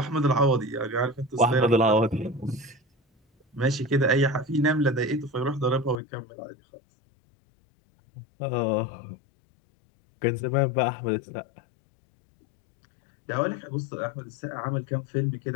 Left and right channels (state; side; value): drops out; right; at 6.0 s